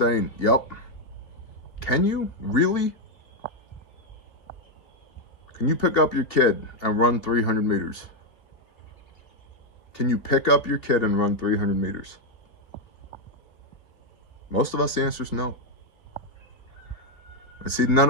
Yep. Can you? Really? Can you pick up your kid and run 300 meters? Can you pick up your kid and run 300 meters? Most of us, the answer is no. And see,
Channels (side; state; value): right; late; 2.9 ms